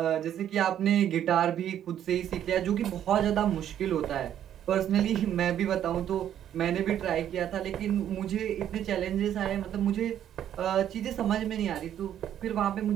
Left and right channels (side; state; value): left; quieter; 10.5 dB